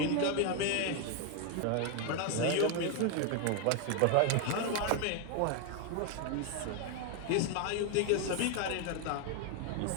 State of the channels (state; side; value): different; both; correlation 0.01